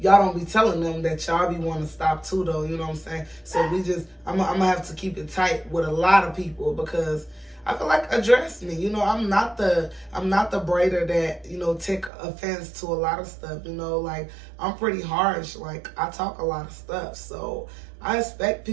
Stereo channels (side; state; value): left; drops out; at 12.1 s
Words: don't be telling them that y'all be wanting to stop too, though. You know what I'm saying? So I'm gonna have to keep it tight with a lot of people, because I feel like, address me. You know, I'm not the braider that, you know, take offense to a lot of stuff. You know, like, I'm pretty harsh. Like, I talk a lot of stuff, so I expect